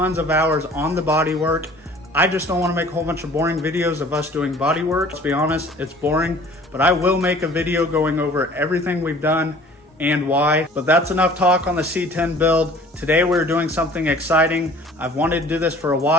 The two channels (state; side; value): normal; both; correlation 0.49